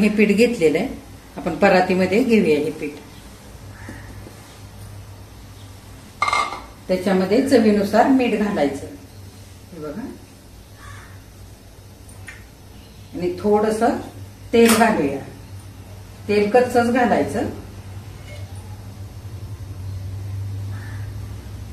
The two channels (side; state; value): both; identical; correlation 1.00